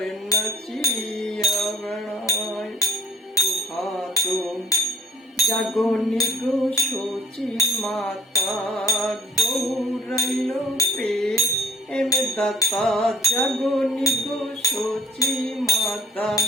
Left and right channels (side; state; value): both; normal; correlation 0.56